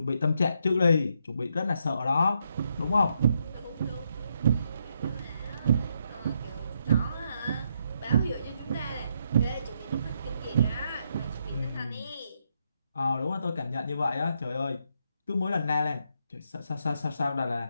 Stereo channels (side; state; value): both; inverted; correlation -0.77